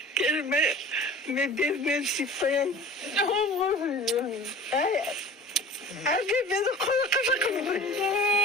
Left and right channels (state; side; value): normal; both; correlation 0.42